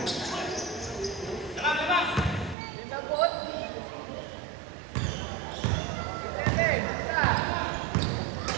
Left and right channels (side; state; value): left; drops out; at 2.6 s